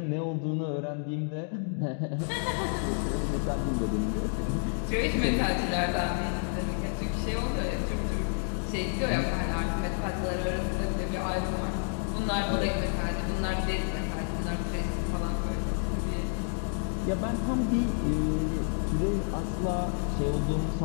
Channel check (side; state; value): right; silent; 58 dB below the other